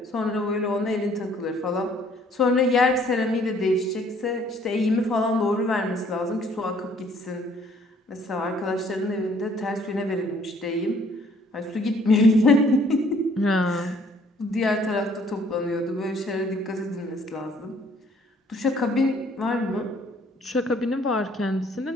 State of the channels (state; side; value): normal; both; correlation 0.60